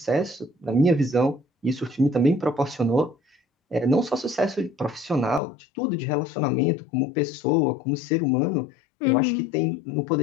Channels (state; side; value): drops out; right; at 5.4 s